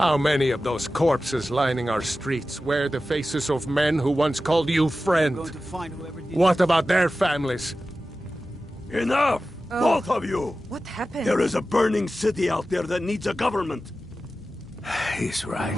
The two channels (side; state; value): both; normal; correlation 0.94